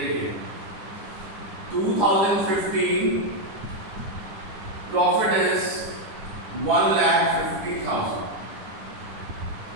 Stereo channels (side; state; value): left; late; 9.9 ms